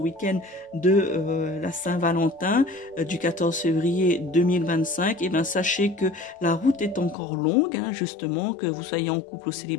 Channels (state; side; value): drops out; right; at 7.2 s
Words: de la Saint-Valentin, du 14 février 2025, et bien sachez que la route est encore longue, justement, que vous soyez en couple ou